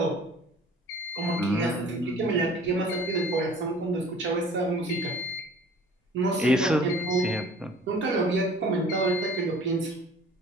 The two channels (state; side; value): normal; both; correlation 0.48